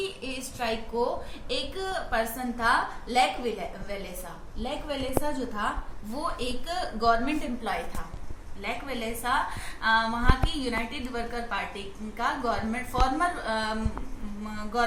स्ट्राइक को एक पर्सन था, लेक वेलेसा जो था वो एक गवर्नमेंट एम्प्लॉय था। लेक वेलेसा वहां की यूनाइटेड वर्कर पार्टी का फॉर्मर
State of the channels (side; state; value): both; identical; correlation 1.00